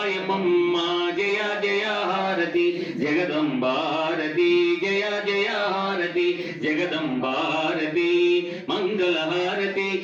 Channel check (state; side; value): identical; both; correlation 1.00